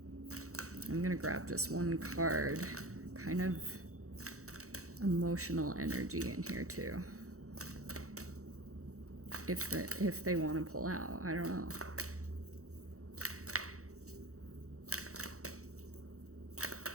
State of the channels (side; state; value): left; late; 0.65 ms